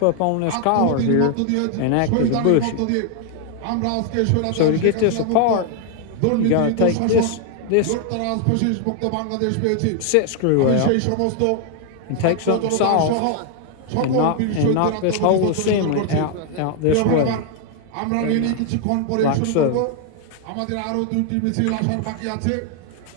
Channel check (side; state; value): both; different; correlation 0.00